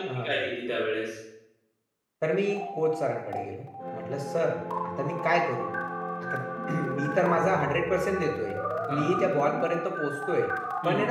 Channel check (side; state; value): both; identical; correlation 1.00